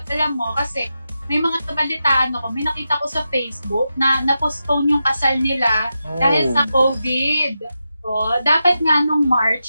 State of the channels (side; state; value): both; inverted; correlation -0.89